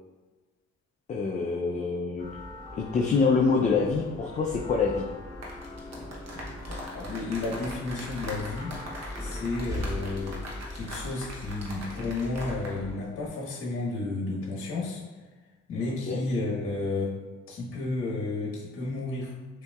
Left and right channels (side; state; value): right; quieter; 3.3 dB